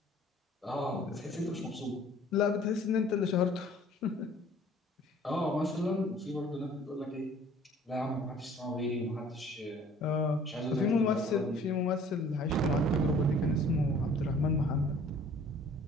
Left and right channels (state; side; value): normal; both; correlation 0.53